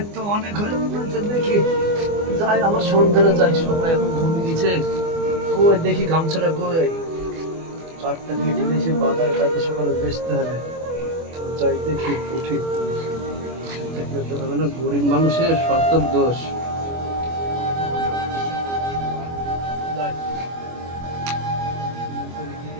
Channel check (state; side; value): late; left; 24 ms